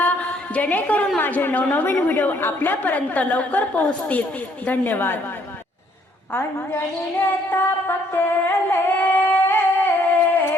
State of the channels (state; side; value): normal; both; correlation 0.66